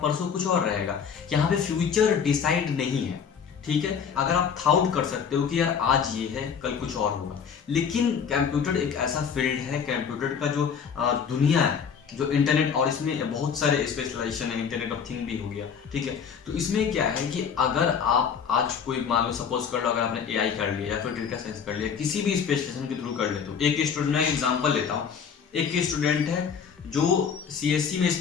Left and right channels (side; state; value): right; quieter; 6.9 dB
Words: परसों कुछ और रहेगा। यहाँ पे फ्यूचर डिसाइड नहीं है, ठीक है। अगर आप थाउट कर सकते हो कि यार आज ये है, कल कुछ और होगा, लेकिन कंप्यूटर एक ऐसा फील्ड है, कंप्यूटर का जो दुनिया है, जो इंटरनेट, और इसमें बहुत सारे स्पेशलाइजेशन है, इंटरनेट ऑफ थिंग भी हो गया, ठीक है। तो इसमें क्या है कि अगर आप आज कोई मान लो, सपोज कर लो अगर आपने एआई कर लिया या फिर डेटा साइंस कर लिया, किसी भी स्पेशलाइजेशन के थ्रू कर लेते हो। एक स्टूडेंट, मैं एग्जांपल लेता हूँ, एक स्टूडेंट है जो सीएससी में